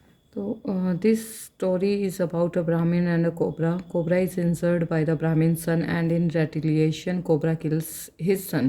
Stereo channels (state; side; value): identical; both; correlation 1.00